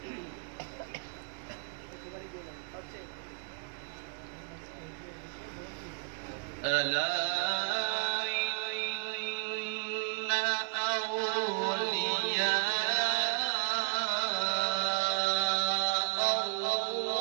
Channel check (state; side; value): quieter; left; 32.6 dB